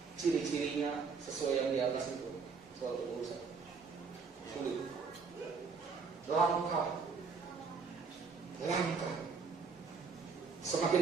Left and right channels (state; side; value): quieter; left; 5.2 dB